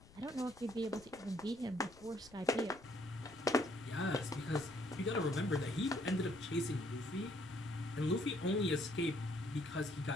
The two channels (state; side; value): noise; left; rumble, 22 dB below the sound